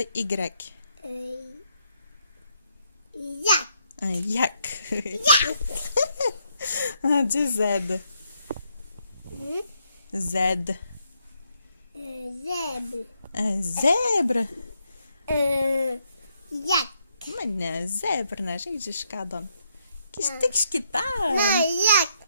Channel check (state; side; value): inverted; both; correlation -0.76